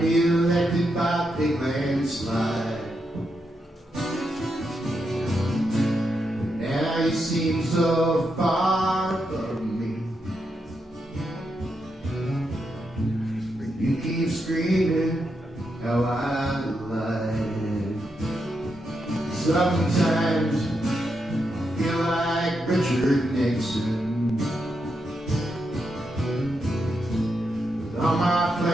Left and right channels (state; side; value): normal; both; correlation 0.83